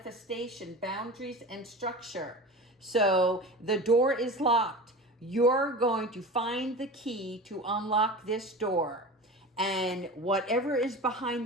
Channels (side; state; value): both; normal; correlation 0.32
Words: boundaries, and structure. So the door is locked. You're going to find the key to unlock this door. And whatever is